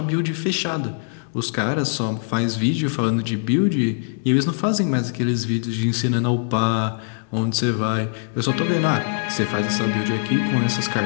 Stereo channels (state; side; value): silent; right; digital silence